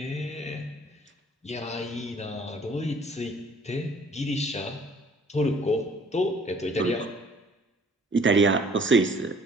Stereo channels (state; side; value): normal; both; correlation 0.55